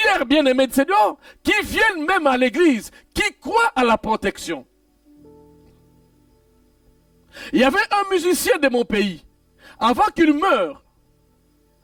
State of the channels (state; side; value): identical; both; correlation 1.00